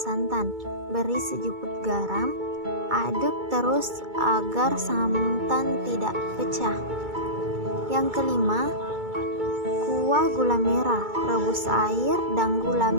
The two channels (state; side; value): late; left; 2.3 ms